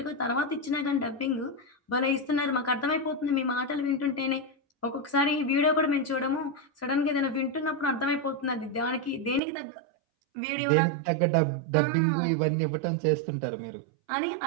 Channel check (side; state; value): left; drops out; at 9.4 s